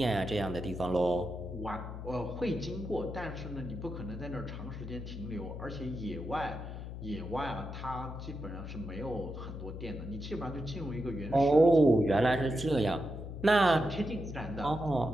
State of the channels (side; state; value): left; noise; hum, 8 dB below the sound